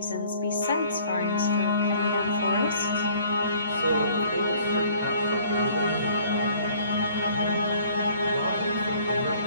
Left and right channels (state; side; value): inverted; both; correlation -0.56